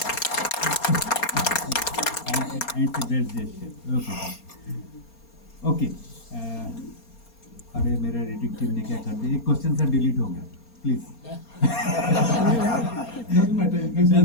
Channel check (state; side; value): late; right; 4.3 ms